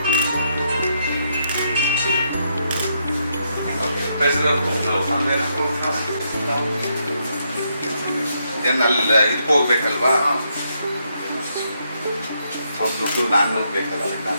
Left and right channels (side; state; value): both; inverted; correlation -0.78